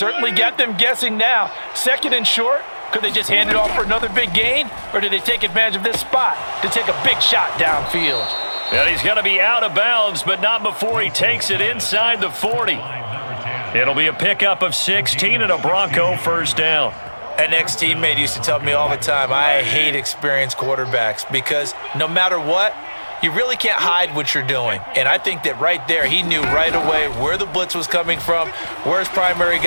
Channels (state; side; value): inverted; both; correlation -1.00